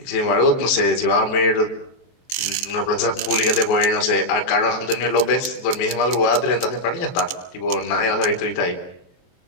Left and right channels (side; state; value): right; late; 22 ms